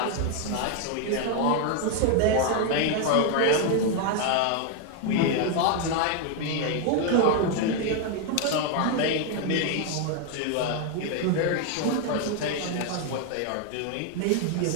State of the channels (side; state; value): both; different; correlation 0.01